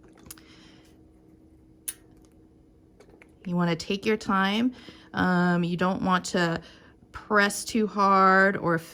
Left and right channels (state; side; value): identical; both; correlation 1.00